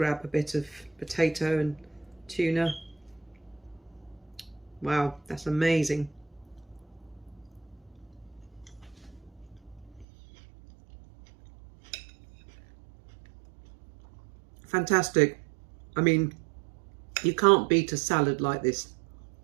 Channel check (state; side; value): drops out; left; at 10.1 s